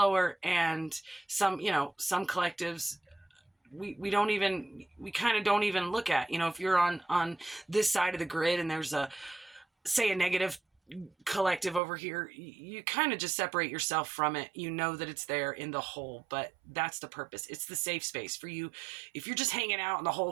and some collectives we kind of don't even look at. If you're on this side of the grid and there's a negative collective over here, you kind of just separate yourself from it. That it's there in the whole, but that's the purpose. It's the safe space for you. If you're just hanging out in the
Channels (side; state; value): left; drops out; at 11.8 s